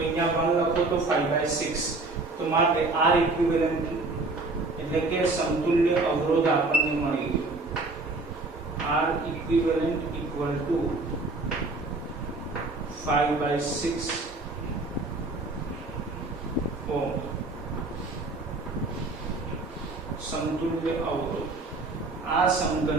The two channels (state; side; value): quieter; left; 3.2 dB